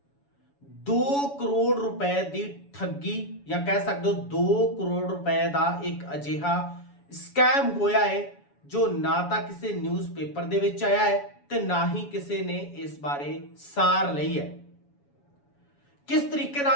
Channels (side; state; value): right; late; 7.1 ms